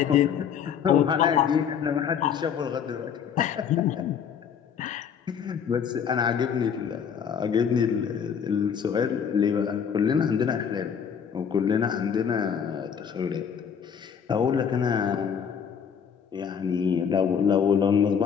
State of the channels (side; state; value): right; quieter; 7.5 dB